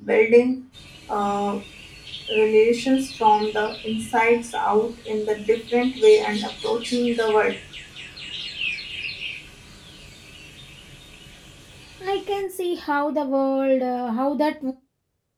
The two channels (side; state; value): both; identical; correlation 1.00